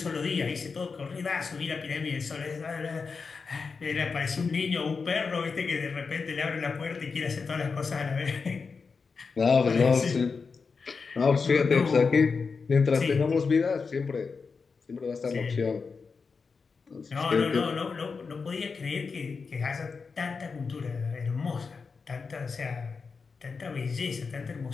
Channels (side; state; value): right; quieter; 5.0 dB